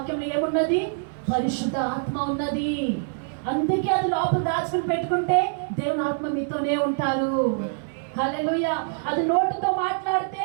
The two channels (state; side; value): silent; left; digital silence